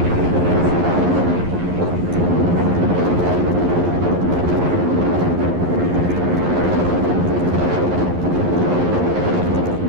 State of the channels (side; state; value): left; late; 11 ms